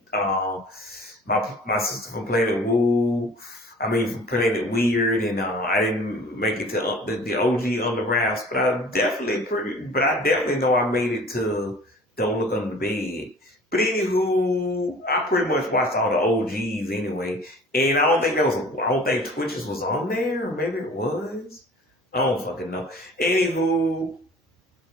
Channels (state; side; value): normal; both; correlation 0.46